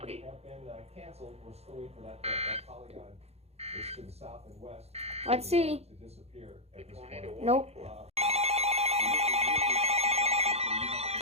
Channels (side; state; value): left; late; 0.30 ms